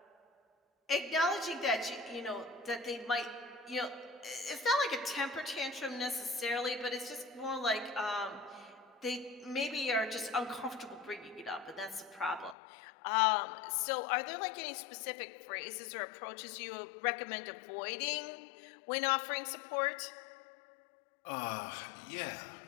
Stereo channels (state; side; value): drops out; right; at 12.6 s